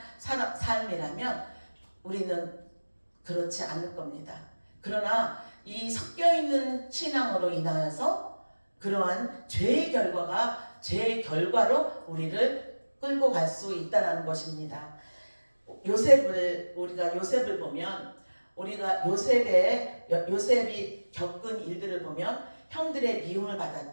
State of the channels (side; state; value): both; inverted; correlation -1.00